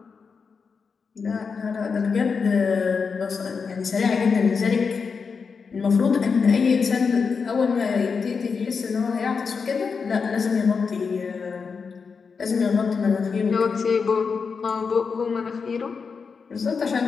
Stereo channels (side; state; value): right; quieter; 5.4 dB